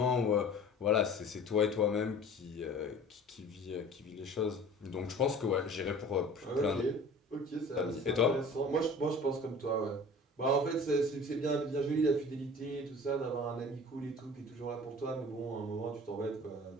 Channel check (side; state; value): both; normal; correlation 0.43